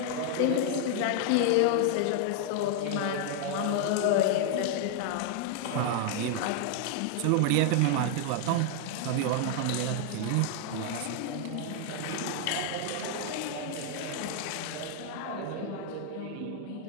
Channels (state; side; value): different; both; correlation 0.00